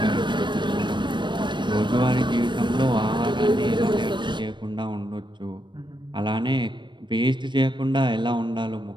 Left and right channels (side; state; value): left; late; 0.22 ms